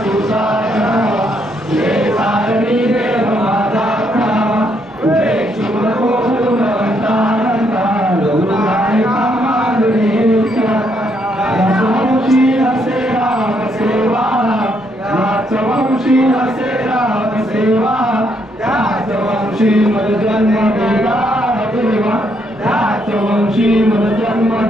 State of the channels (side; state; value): both; normal; correlation 0.74